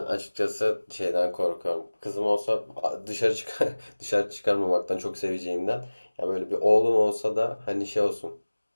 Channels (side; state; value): both; inverted; correlation -1.00